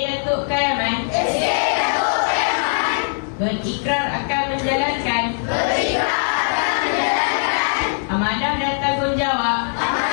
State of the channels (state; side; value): silent; right; 60 dB below the other